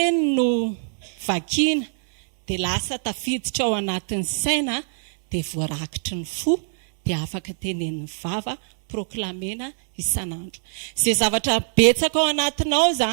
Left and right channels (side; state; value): left; silent; 63 dB below the other